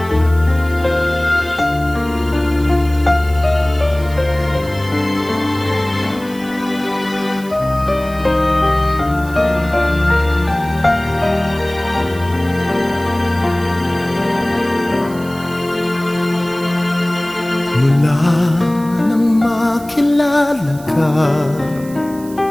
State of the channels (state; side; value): noise; right; hiss, 20 dB below the sound